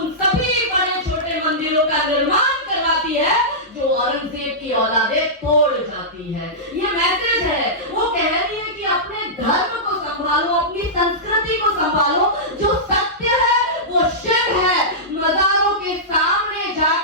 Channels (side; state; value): both; normal; correlation -0.14